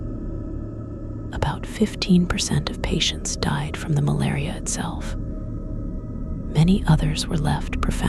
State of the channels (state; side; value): identical; both; correlation 1.00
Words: About 15% of patients died from the malaria itself. Many others were left